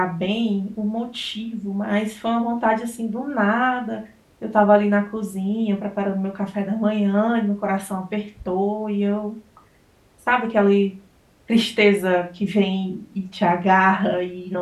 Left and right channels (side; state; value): both; identical; correlation 1.00